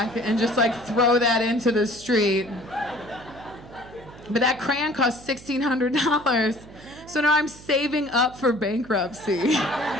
and just like throw that into the street. But that crayon costs $1,600. So now I'm saving up for bankruptcy.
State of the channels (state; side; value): noise; right; hum, 19 dB below the sound